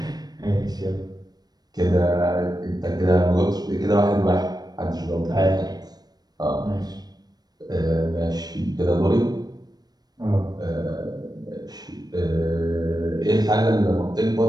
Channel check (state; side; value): late; left; 0.19 ms